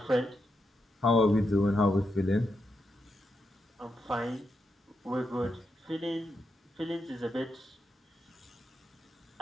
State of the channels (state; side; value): normal; both; correlation 0.84